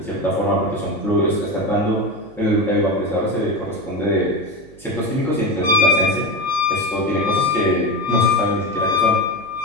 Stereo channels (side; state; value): right; noise; hum, 23 dB below the sound